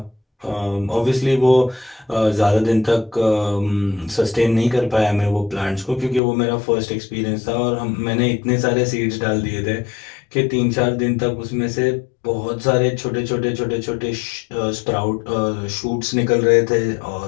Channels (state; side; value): drops out; right; at 6.2 s